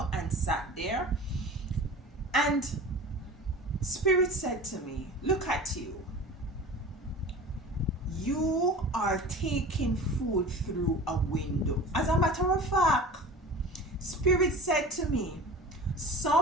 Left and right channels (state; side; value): normal; both; correlation 0.37